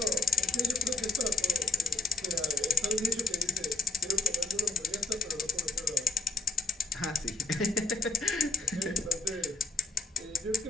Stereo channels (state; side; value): quieter; right; 4.2 dB